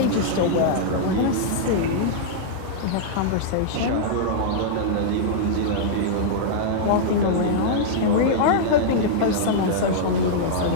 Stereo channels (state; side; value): different; both; correlation -0.02